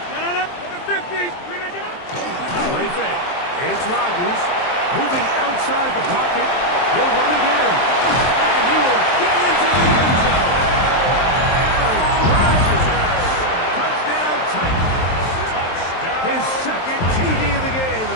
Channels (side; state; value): right; late; 23 ms